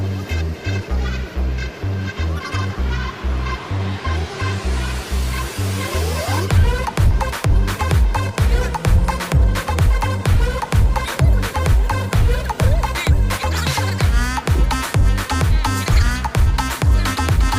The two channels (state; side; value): identical; both; correlation 1.00